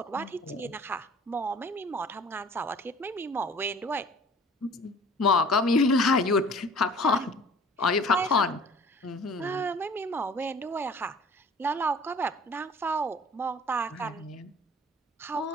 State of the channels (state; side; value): normal; both; correlation 0.48